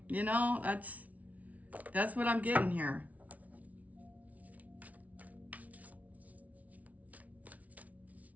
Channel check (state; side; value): late; left; 0.070 ms